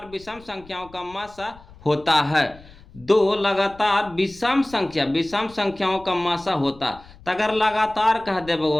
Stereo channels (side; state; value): left; noise; rumble, 23 dB below the sound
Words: विषम संख्याओं का मासा होता है, दो लगातार विषम संख्याओं का मासा होता। तो अगर लगातार कह दे